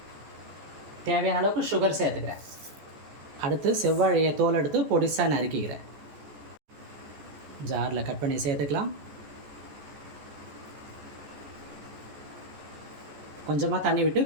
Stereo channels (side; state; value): left; late; 14 ms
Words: தேவையான அளவுக்கு சுகர் சேர்த்துக்கிறேன். அடுத்து செவ்வாழையை தோல் எடுத்து பொடிசாக நறுக்கிக்கிறேன். ஜாரில் கட் பண்ணி சேர்த்துக்கலாம். கொஞ்சமாக தண்ணி விட்டு